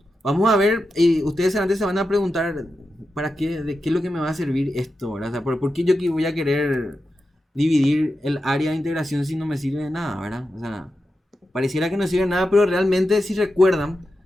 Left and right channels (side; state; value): both; normal; correlation 0.90